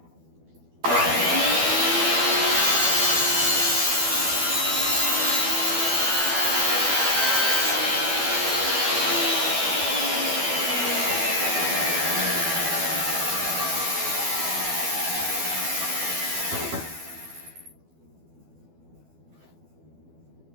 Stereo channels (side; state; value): left; late; 12 ms